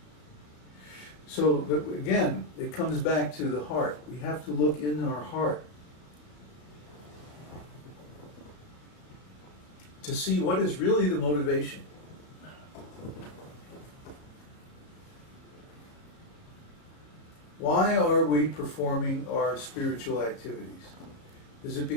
So again, it comes back to the heart. We have to look in our heart to see what is really the motivation. Why are we performing our spiritual activities? Is it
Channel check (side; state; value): right; late; 34 ms